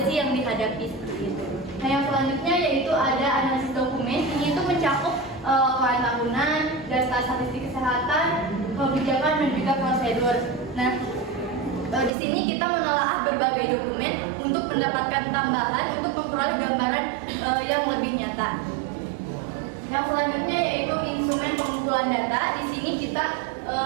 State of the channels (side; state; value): left; drops out; at 12.1 s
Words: sih yang dihadapi seperti itu. Nah, yang selanjutnya yaitu ada analisis dokumen. Ini itu mencakup laporan tahunan, data statistik kesehatan, kebijakan, dan juga prosedur. Nah, di sini kita menelaah berbagai dokumen untuk mendapatkan tambahan untuk memperoleh gambaran yang lebih nyata. Yang selanjutnya yaitu instrumen pengumpulan data. Di sini kita